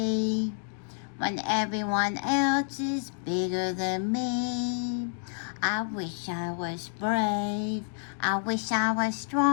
when everyone else is bigger than me. I wish I was brave. I wish I was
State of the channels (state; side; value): silent; right; 56 dB below the other